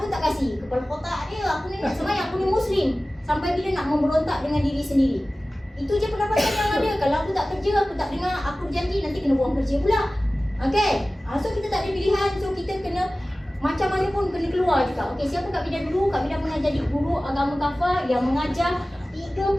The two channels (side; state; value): both; normal; correlation 0.97